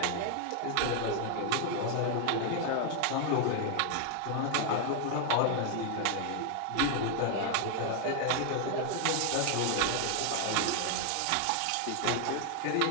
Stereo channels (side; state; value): both; different; correlation 0.00